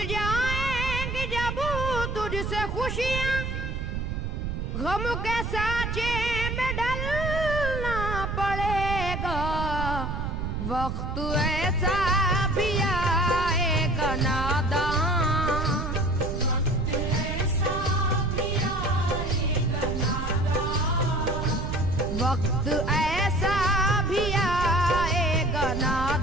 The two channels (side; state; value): right; noise; rumble, 3 dB below the sound